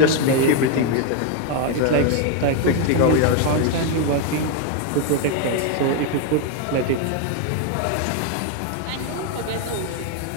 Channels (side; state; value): both; different; correlation 0.01